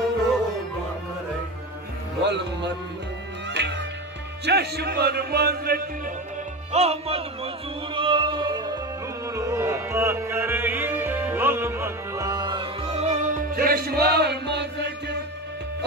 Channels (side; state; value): both; normal; correlation 0.24